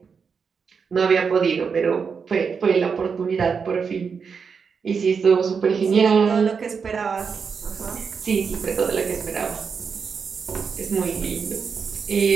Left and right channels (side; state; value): left; quieter; 5.9 dB